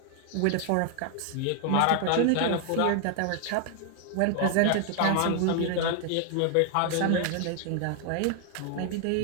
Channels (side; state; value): both; different; correlation 0.00